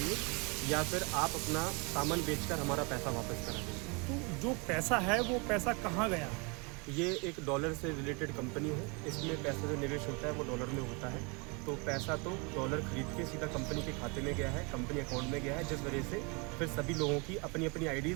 या फिर आप अपना सामान बेचकर हमारा पैसा वापस करा देंगे। तो जो पैसा है वो पैसा कहाँ गया? ये एक डॉलर से रिलेटेड कंपनी है, इसमें पैसा जो निवेश होता है वो डॉलर में होता है। तो पैसा तो डॉलर खरीद के सीधा कंपनी के खाते में गया है, कंपनी अकाउंट में गया है, जिस वजह से फिर सभी लोगों की अपनी अपनी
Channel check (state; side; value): quieter; left; 31.1 dB